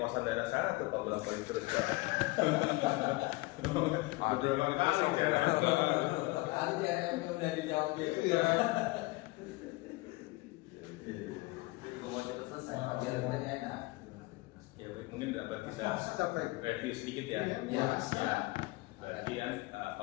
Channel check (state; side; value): quieter; right; 22.3 dB